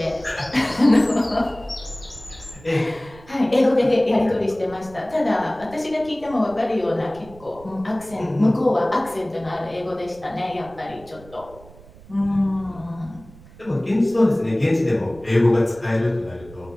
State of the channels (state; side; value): noise; right; rumble, 21 dB below the sound